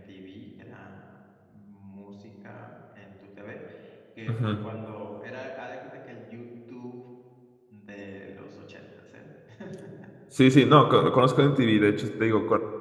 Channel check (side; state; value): both; identical; correlation 1.00